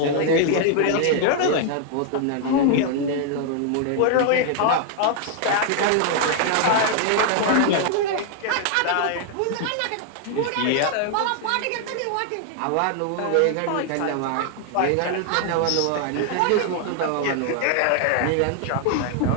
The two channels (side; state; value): both; different; correlation 0.00